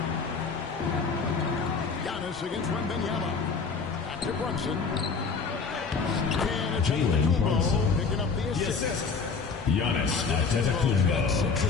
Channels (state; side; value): quieter; right; 5.0 dB